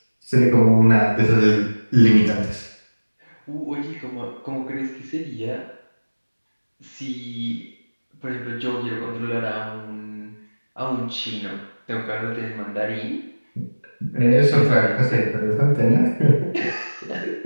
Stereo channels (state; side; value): inverted; both; correlation -1.00